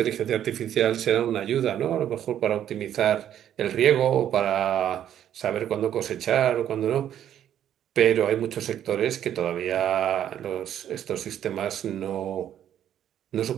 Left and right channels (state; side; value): quieter; left; 10.5 dB